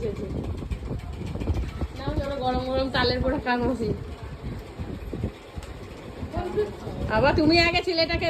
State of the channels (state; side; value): identical; both; correlation 1.00